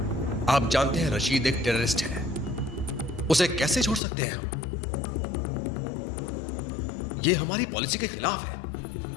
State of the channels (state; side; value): drops out; right; at 4.0 s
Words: आप जानते हैं रशीद एक टेररिस्ट है, उसे कैसे छोड़ सकते हैं हम? ये हमारी पॉलिसी के खिलाफ है।